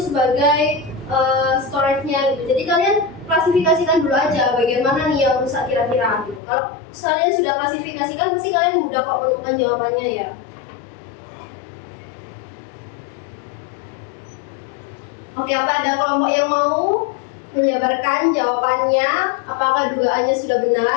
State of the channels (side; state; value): right; drops out; at 6.4 s